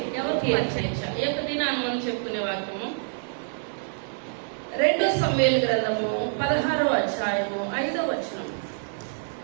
ఎవరికి అక్షయించాలి? ఏ దినాన్ని మనం చెప్పుకునే వాక్యము 2 సమూయేలు గ్రంథము 16వ అధ్యాయము 5వ వచనం.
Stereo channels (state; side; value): silent; left; digital silence